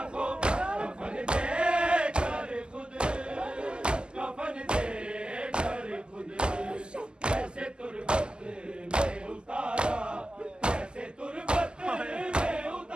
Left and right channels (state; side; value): late; left; 0.048 ms